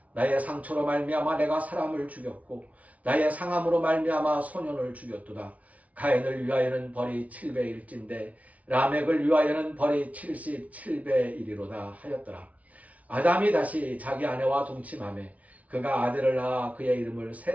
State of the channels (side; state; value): left; late; 0.068 ms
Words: 나의 상처로 말미암아 내가 사람을 죽였고 나의 상함으로 말미암아 소년을 죽였도다. 가인을 위하여는 벌이 7배일진데 라멕을 위하여는 벌이 77배이리로다 하였더라. 아담이 다시 자기 아내와 동침하매 그가 아들을 낳아 그의 이름을